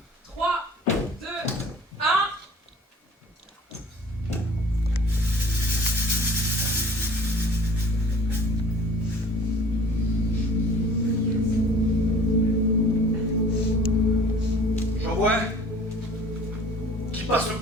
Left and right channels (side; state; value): both; normal; correlation 0.48